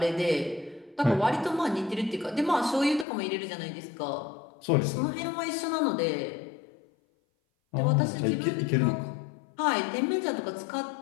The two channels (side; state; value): right; drops out; at 3.1 s